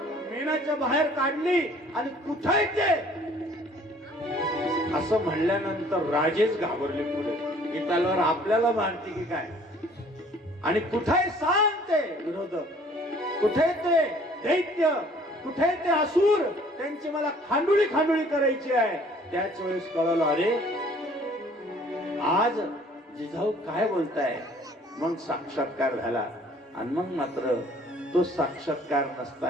मेणाच्या बाहेर काढली आणि कुठे ते असं म्हणल्यानंतर राजेच घाबरले पुढे की तलवार आपल्याला मारते की काय. आणि कुठे सांग ते विरोधक, कुठे ते दैत्य, कुठे ते असुर, त्यांची मला खांडोळी खांडोळी करायची आहे. त्याच वेळेस कळलं अरे आज जिजाऊ काय बोलताय. मग साक्षात्कार झाला. आणि मग मात्र तो साक्षात्कार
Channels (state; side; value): normal; both; correlation 0.55